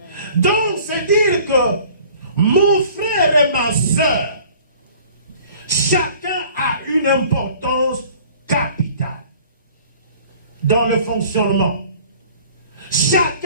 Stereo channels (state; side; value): inverted; both; correlation -0.50